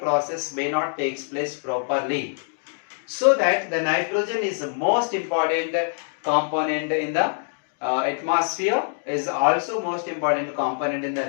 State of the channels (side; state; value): right; silent; 61 dB below the other